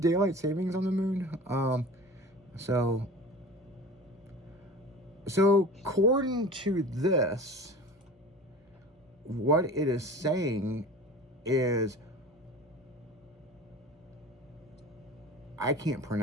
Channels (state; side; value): normal; both; correlation 0.38